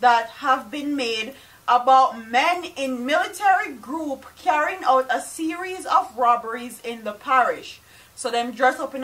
have been made about men in military group carrying out a series of robberies in the parish. So them dress up in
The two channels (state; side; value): identical; both; correlation 1.00